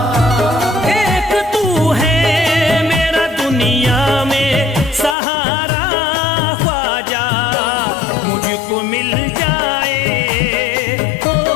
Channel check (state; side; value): drops out; right; at 5.2 s